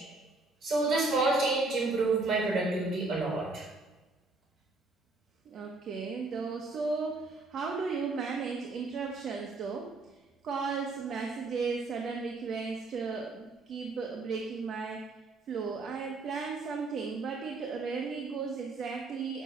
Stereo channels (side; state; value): left; quieter; 3.5 dB